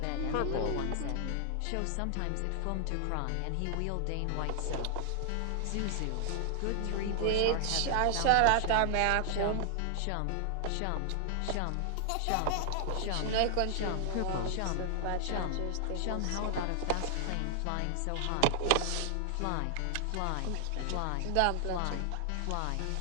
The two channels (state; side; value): different; both; correlation 0.00